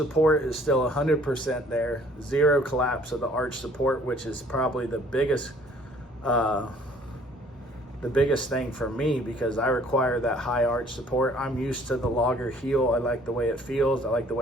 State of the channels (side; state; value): both; normal; correlation 0.57